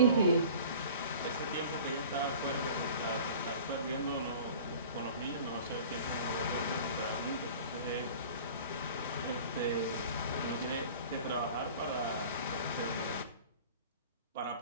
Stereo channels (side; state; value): both; inverted; correlation -0.43